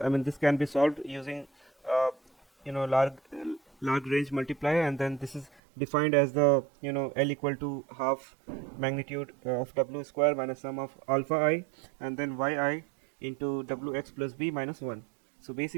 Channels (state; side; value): drops out; left; at 5.6 s